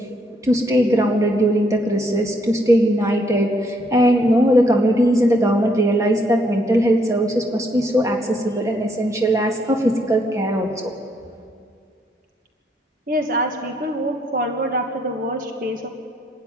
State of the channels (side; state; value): both; normal; correlation 0.72